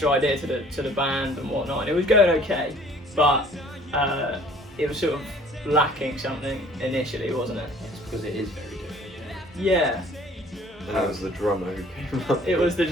idea to the band and whatnot, and it was going okay, but it was sort of lacking something initially, wasn't it? It's because it is very different. Yeah. And it was the drummer who came up. It was the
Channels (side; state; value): both; normal; correlation 0.54